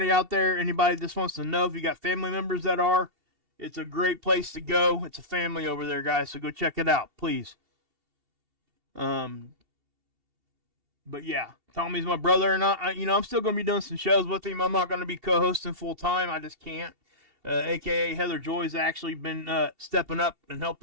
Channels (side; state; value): left; late; 2.7 ms